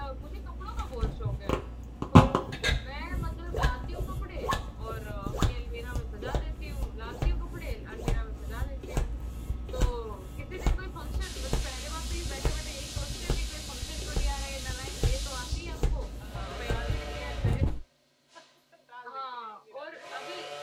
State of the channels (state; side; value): identical; both; correlation 1.00